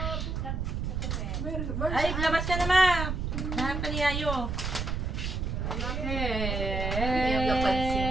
Ay, labas ka na, ma! Nahanap ka ni Yayo. Yung napansin.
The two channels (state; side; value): noise; right; rumble, 2 dB below the sound